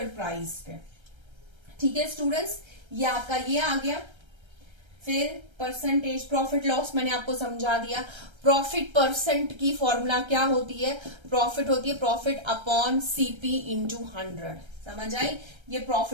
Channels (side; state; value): left; late; 1.3 ms